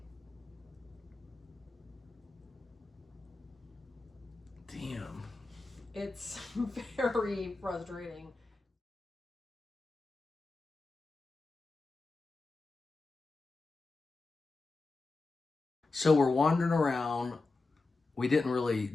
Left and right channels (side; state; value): right; quieter; 3.6 dB